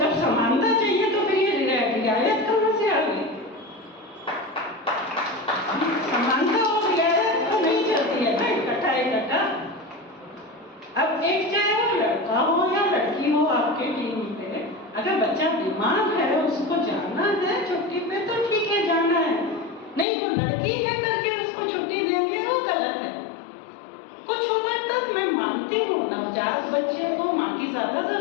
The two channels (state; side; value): drops out; right; at 20.1 s